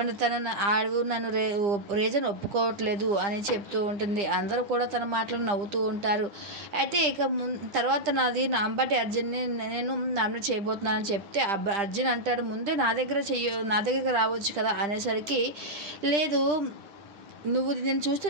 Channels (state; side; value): late; left; 10 ms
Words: నన్ను రీజన్ ఒప్పుకోవట్లేదు అని చెప్తూ ఉంటుంది. అందరూ కూడా తన మాటలు నవ్వుతూ ఉంటారు. అయితే ఇక తర్వాత నాది అంబటి అర్జున్ని నేను నామినేట్ చేయబోతున్నానని చెప్తే అర్జున్ అంటాడు, ముందే నా దగ్గరికి రావచ్చు కదా అనేసరికి, లేదు నువ్వు నేను చూస్తే